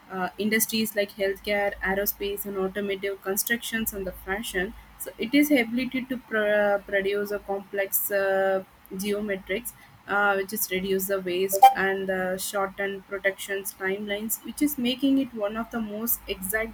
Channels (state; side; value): identical; both; correlation 1.00